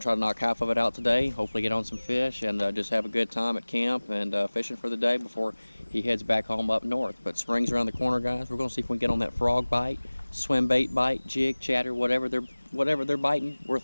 try to knock half of it out today. Hopefully get on some fish and just have a good time at camp and fishing for the day before he heads back home up north. But spring's around the corner, guys. We're going to see if we can get on that frog bite, swim bait bite, jig, chatter, whatever they're biting, we're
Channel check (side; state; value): both; inverted; correlation -1.00